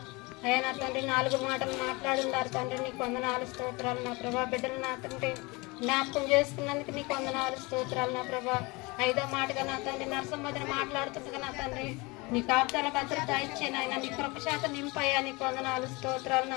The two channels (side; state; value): right; quieter; 25.4 dB